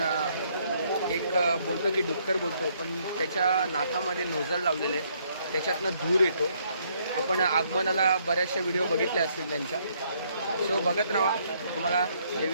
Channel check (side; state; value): both; inverted; correlation -0.69